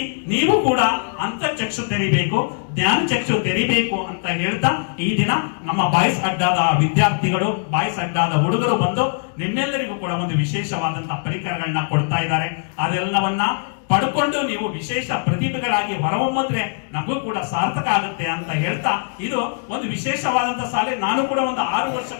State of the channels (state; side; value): silent; right; 65 dB below the other